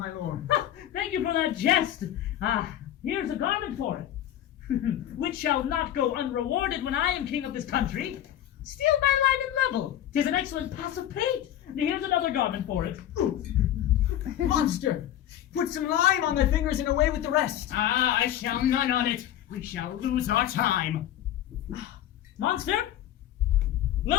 lord. Thank you for that jest. Here's a garment for it, which shall not go unrewarded when I am king of this country. Steal by line and level. 'Tis an excellent pass of paint. Here's another garment for it. Monster! Put some lime on thy fingers and away with the rest. I shall none on it. We shall lose our time. Monster,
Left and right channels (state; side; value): quieter; right; 11.8 dB